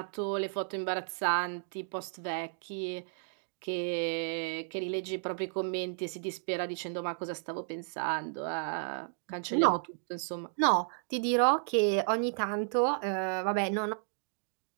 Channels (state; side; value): silent; left; digital silence